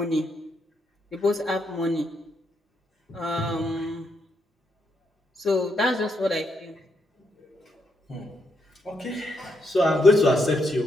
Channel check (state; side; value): normal; both; correlation 0.78